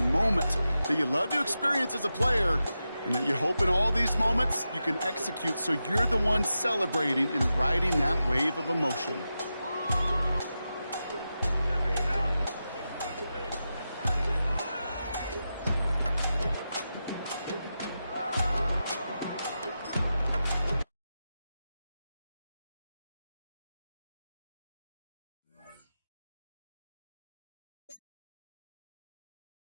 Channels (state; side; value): inverted; both; correlation -0.90